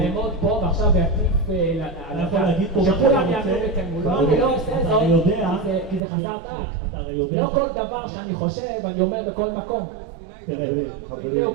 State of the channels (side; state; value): left; drops out; at 6.0 s